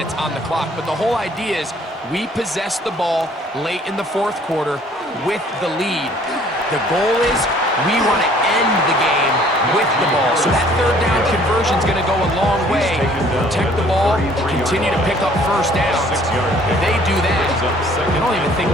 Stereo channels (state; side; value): normal; both; correlation 0.57